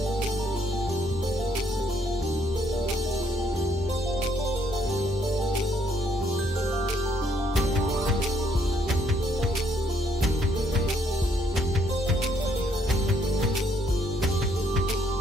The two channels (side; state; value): both; normal; correlation 0.69